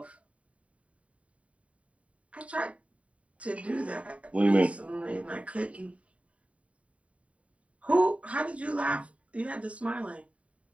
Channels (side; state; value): left; late; 0.065 ms